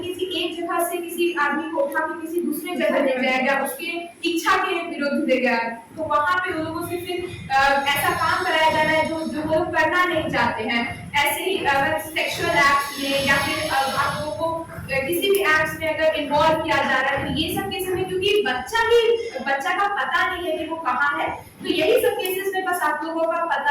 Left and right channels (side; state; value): both; identical; correlation 1.00